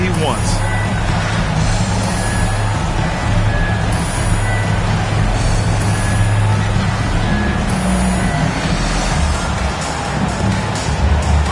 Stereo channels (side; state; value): both; identical; correlation 1.00